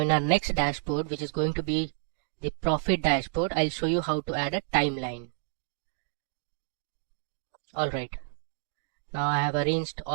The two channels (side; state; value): left; silent; digital silence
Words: in our next dashboard, which is going to be the profit dashboard, I'll show you how to add a timeline. Alright, now I have arranged